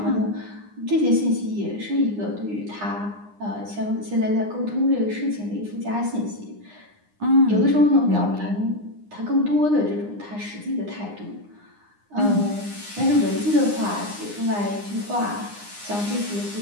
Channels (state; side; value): late; left; 9.8 ms